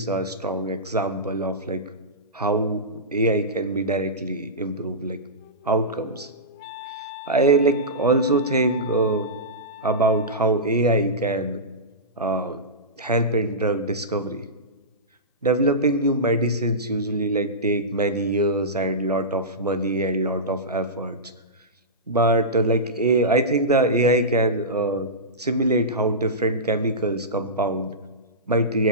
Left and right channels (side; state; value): both; normal; correlation -0.18